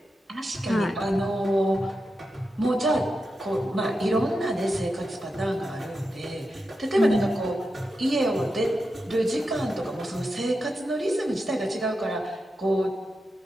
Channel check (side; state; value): both; normal; correlation 0.89